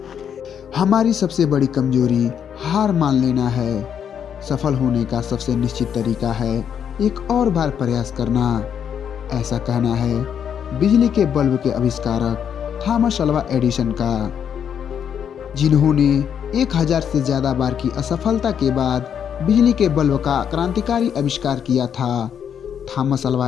हमारी सबसे बड़ी कमजोरी हार मान लेना है। सफल होने का सबसे निश्चित तरीका है एक और बार प्रयास करना। ऐसा कहना है बिजली के बल्ब के आविष्कारक थॉमस अल्वा एडिसन का, जिन्होंने 1000 से ज्यादा बार की असफलता के बाद बिजली के बल्ब का क्रांतिकारी आविष्कार किया था। थॉमस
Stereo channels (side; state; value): right; quieter; 8.3 dB